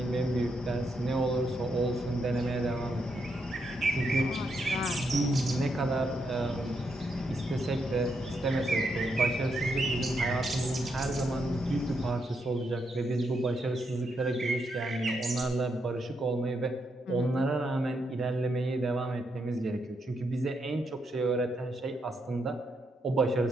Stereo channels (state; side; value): normal; both; correlation 0.80